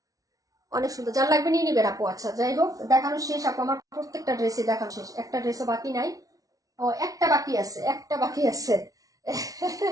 অনেক সুন্দর। যার লাগবে নিয়ে নিবেন আপু। আচ্ছা, যাই হোক, দেখানো শেষ আপু, আমার প্রত্যেকটা ড্রেসে দেখানো শেষ, একটা ড্রেসও বাকি নাই। ও, একটা বাকি আছে, একটা বাকি আছে।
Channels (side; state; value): left; late; 0.18 ms